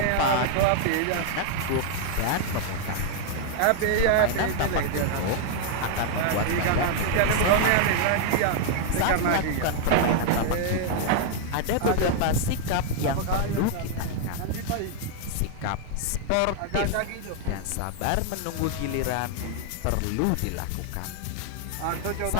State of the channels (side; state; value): both; different; correlation 0.00